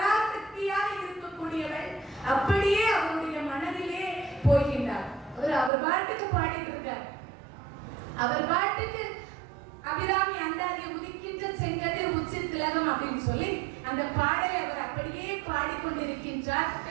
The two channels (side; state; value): left; drops out; at 5.7 s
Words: இருக்கக்கூடியவள் அப்படியே அவருடைய மனதிலே போகின்றார். அவர் பாட்டுக்கு பாடிட்டு இருக்கார். அவர் பாட்டுக்கு அபிராமி அந்தாதியை உதிக்கின்ற செங்கதிர் உச்சி திலகம் அப்படின்னு சொல்லி அந்த பாடலை அவர் அப்படியே பாடிக்கொண்டிருக்கின்றார்.